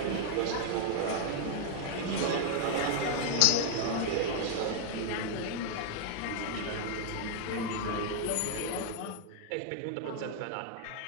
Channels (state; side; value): different; both; correlation 0.00